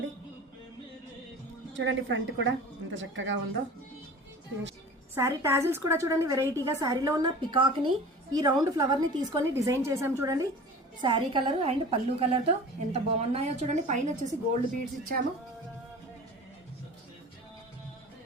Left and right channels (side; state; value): both; normal; correlation 0.39